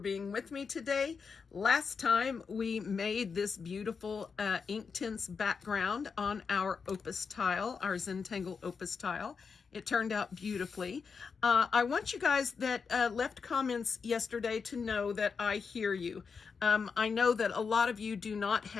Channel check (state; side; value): quieter; right; 5.5 dB